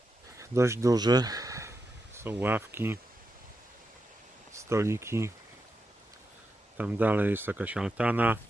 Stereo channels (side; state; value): both; normal; correlation 0.87